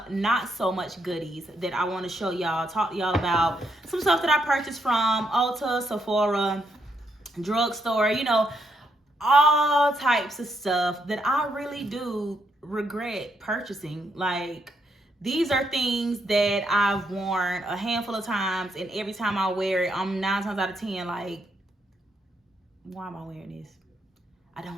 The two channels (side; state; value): both; normal; correlation 0.77